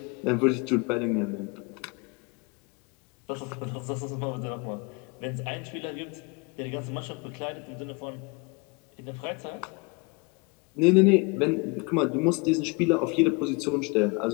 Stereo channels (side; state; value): right; quieter; 28.7 dB